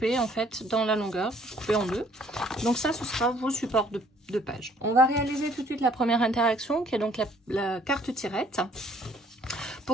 en fait dans la longueur, coupé en deux. Donc ça, ce sera vos supports de page. On va réaliser tout de suite la première interaction qui est donc la carte tirette.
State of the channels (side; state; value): both; normal; correlation 0.61